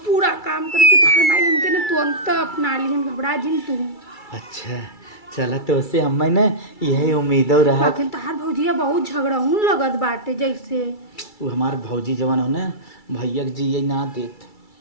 पूरा काम करब कि तोहर माई हमके ना तुरंत अपना ली हम घबरा जिन तू। अच्छा चला तो उससे हमें ना यही उम्मीदों रहा लेकिन तहार भौजिया बहुत झगड़ाऊन लगत बाटे जैसे वो हमार भौजी जवान हो ना भैया जी ये ना देत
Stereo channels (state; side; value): late; right; 2.3 ms